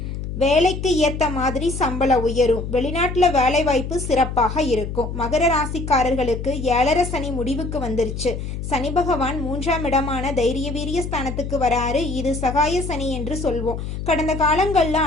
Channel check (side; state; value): left; noise; hum, 6 dB below the sound